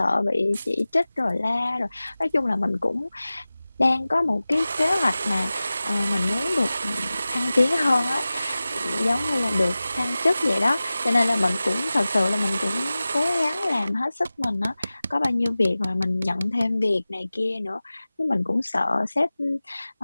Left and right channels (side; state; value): both; inverted; correlation -0.97